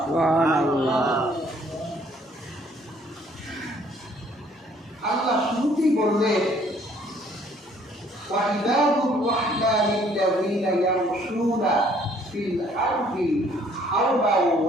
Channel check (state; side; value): normal; both; correlation 0.61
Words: সুবহানাল্লাহ। আল্লাহ শুরুতেই বললেন وعباد الرحمن الذين يمشون في الأرض حربا